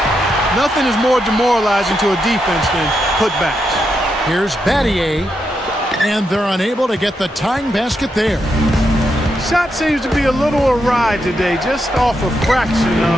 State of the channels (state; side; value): normal; both; correlation 0.83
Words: nothing is more demoralizing to a defense than putbacks. Here's Battier, and they're unable to get the tying basket there. Shot seems to be a little awry today, just off a fraction.